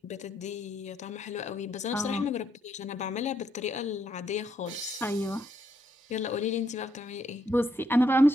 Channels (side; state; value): both; normal; correlation 0.75